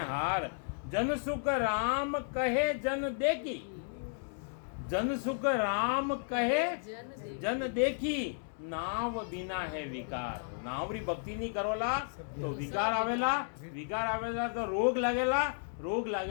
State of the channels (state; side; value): silent; right; digital silence